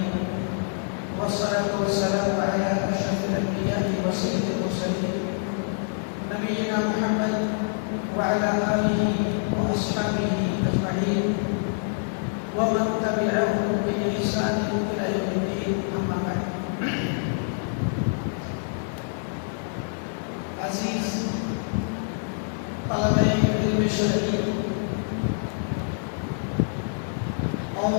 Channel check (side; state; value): right; silent; digital silence